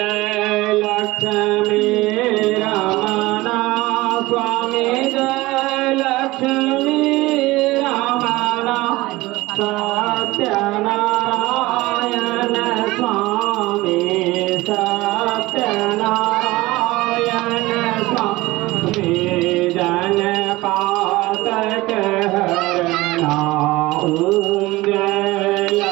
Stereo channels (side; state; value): left; quieter; 19.8 dB